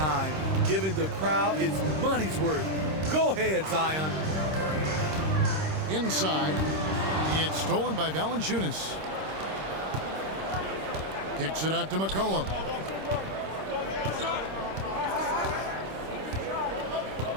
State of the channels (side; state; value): left; late; 26 ms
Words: giving the crowd its money's worth. Go ahead, Zion. Inside, it's stolen by Valanciunas. Kicks it out to McCollum.